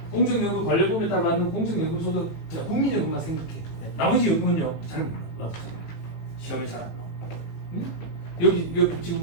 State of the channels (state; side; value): late; right; 18 ms